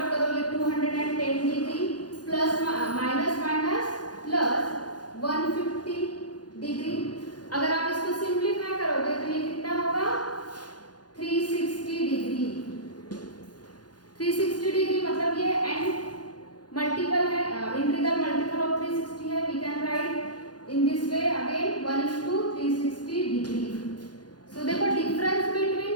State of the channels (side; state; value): right; late; 0.69 ms